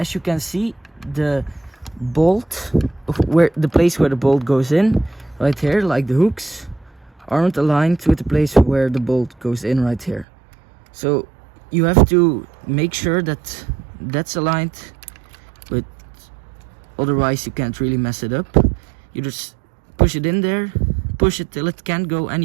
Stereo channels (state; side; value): drops out; left; at 10.2 s